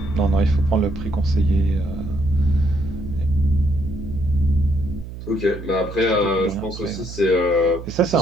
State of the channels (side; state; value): right; noise; hum, 11 dB below the sound